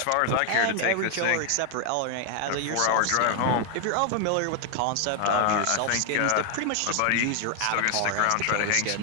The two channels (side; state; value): both; different; correlation 0.00